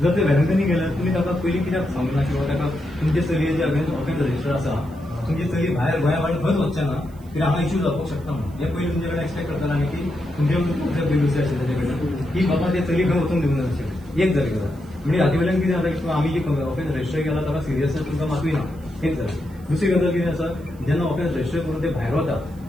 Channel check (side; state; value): right; noise; hiss, 29 dB below the sound